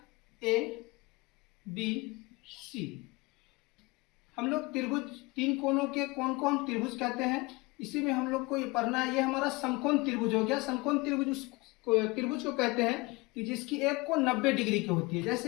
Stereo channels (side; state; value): right; quieter; 24.5 dB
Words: A, B, C। हम लोग त्रिभुज 3 कोणों के कोण को हम त्रिभुज कहते हैं। इसी में हम लोग को ये पढ़ना है। ये हमारा समकोण त्रिभुज हो गया। समकोण त्रिभुज त्रिभुज को कहते हैं कि जिसकी एक कोण 90 डिग्री की होती है।